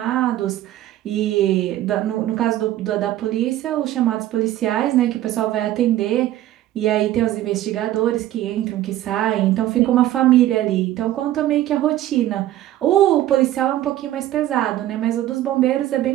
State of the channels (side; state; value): left; quieter; 13.8 dB